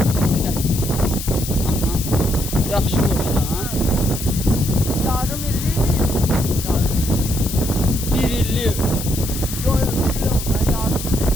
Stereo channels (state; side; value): noise; left; hiss, 8 dB below the sound